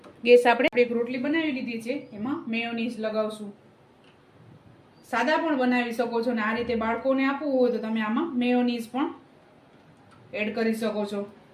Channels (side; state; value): both; identical; correlation 1.00